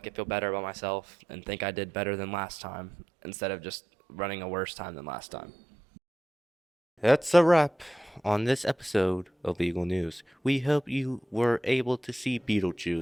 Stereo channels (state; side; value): normal; both; correlation 0.88